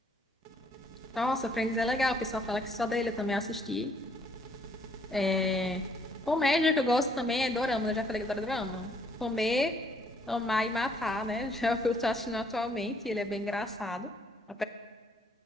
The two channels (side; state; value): both; normal; correlation 0.66